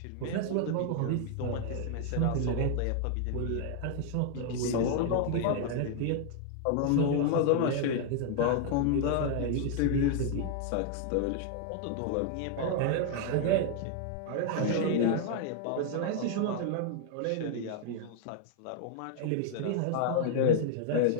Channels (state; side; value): different; both; correlation 0.00